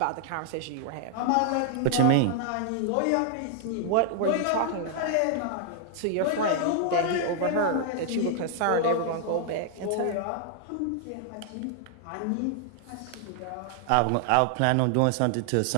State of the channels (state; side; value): different; both; correlation 0.00